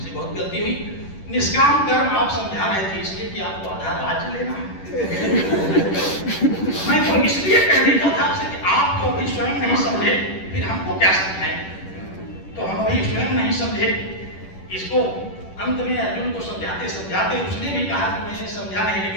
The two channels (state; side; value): late; right; 10 ms